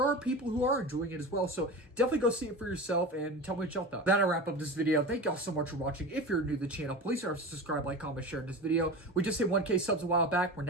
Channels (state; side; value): normal; both; correlation 0.29